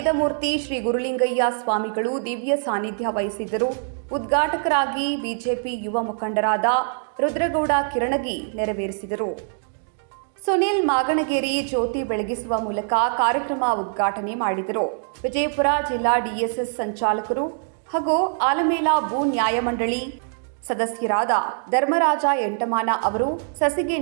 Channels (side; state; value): left; silent; digital silence